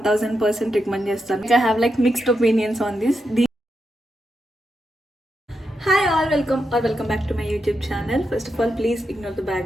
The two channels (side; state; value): both; normal; correlation 0.85